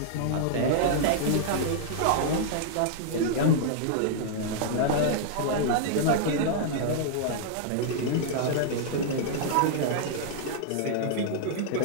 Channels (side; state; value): both; different; correlation -0.01